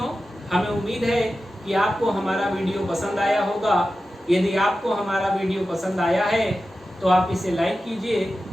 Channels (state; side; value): normal; both; correlation 0.93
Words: हमें उम्मीद है कि आपको हमारा वीडियो पसंद आया होगा। यदि आपको हमारा वीडियो पसंद आया है तो आप इसे लाइक कीजिए